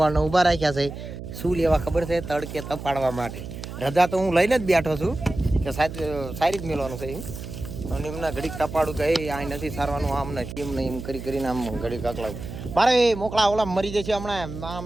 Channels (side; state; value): right; noise; hum, 10 dB below the sound